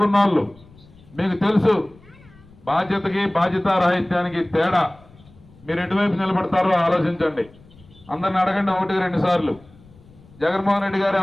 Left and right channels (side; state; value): left; noise; rumble, 25 dB below the sound